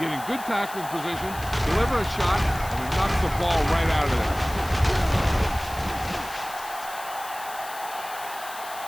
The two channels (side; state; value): left; noise; hiss, 14 dB below the sound